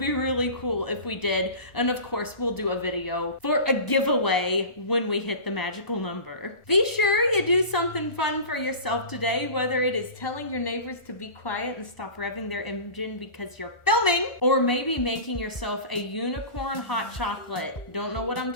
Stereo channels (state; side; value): late; right; 1.4 ms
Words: really cool if we did. And of course, we'll do a video for a giveaway when we hit the magical number. Be sure you do something fun for yourself today, whether it is telling your neighbors to be quiet and stop revving their engine because you're filming, or maybe making yourself a unicorn hot chocolate. Don't know what I'm